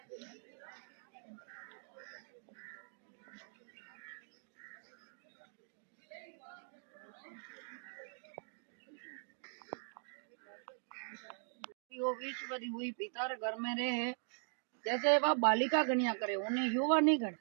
वो विश्वरी हुई पिता रे घर में रहे जैसे वह बालिका कन्या करे उन्हें युवा नहीं करे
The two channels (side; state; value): left; silent; digital silence